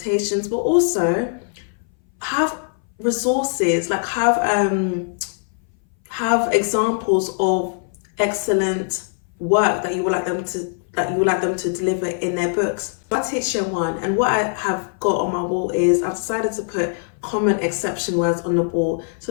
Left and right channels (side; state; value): right; silent; 61 dB below the other